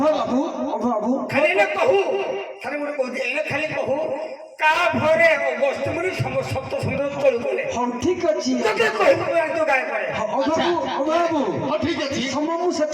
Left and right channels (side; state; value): both; identical; correlation 1.00